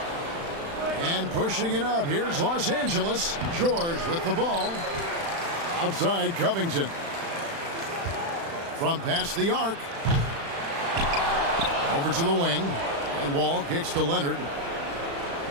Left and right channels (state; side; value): late; left; 36 ms